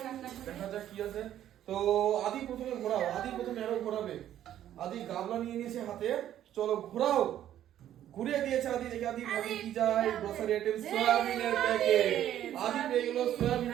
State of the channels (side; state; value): left; quieter; 11.5 dB